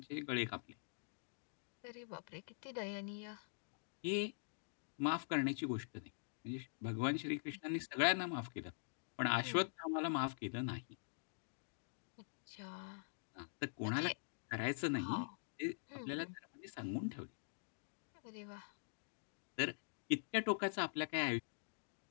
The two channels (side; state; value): right; silent; digital silence